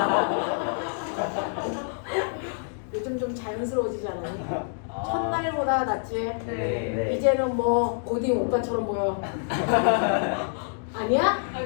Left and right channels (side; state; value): right; silent; digital silence